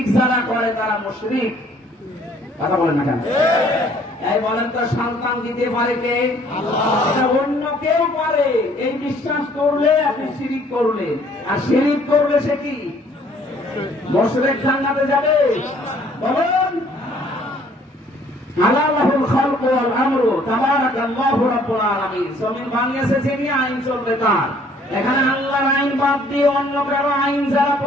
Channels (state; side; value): normal; both; correlation 0.59